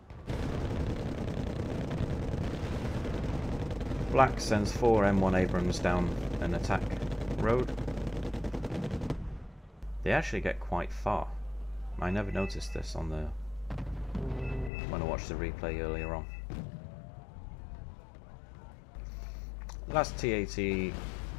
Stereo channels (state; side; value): drops out; right; at 14.7 s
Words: Black sends 4 M1 Abrams down an attack road. They actually get quite far. I never noticed this on the when I watched the replay earlier on. Last TAT,